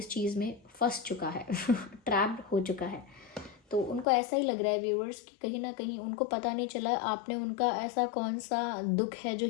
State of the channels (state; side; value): drops out; right; at 4.0 s